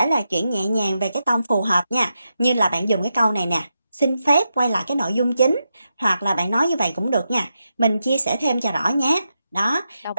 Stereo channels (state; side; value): inverted; both; correlation -0.86